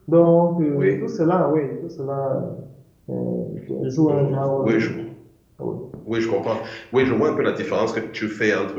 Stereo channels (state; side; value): identical; both; correlation 1.00